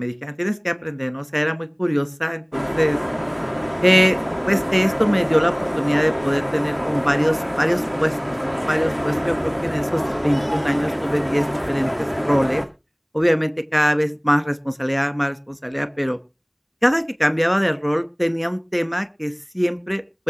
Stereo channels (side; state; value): both; identical; correlation 1.00